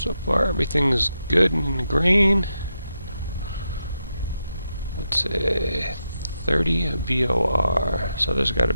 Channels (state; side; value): inverted; both; correlation -0.85